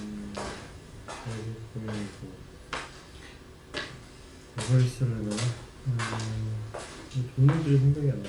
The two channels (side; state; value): both; identical; correlation 1.00